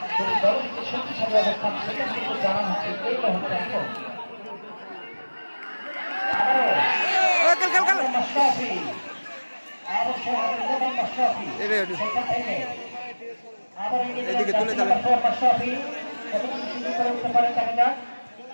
দুটি দলের দিকে শক্তিশালী অবস্থান সেটা কিন্তু জানা হচ্ছে এই মুহূর্তে এখন এদিকে তুলে দেবেন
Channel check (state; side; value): inverted; both; correlation -1.00